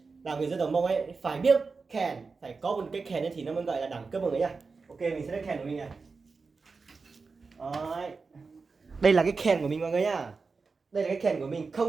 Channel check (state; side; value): quieter; left; 4.5 dB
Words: Là người dân tộc Mông ấy phải biết kèn, phải có một cái kèn ấy thì nó mới gọi là đẳng cấp mọi người nhá. Ok, mình sẽ lấy kèn của mình này. Đấy. Đây là cái kèn của mình mọi người nhá. Đây là cái kèn của mình,